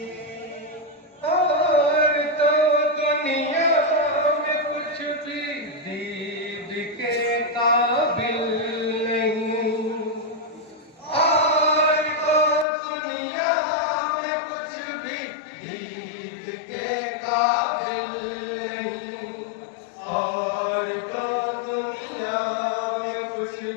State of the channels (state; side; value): drops out; right; at 12.7 s